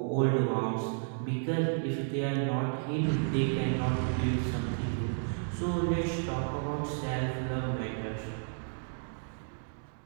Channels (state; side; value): silent; left; digital silence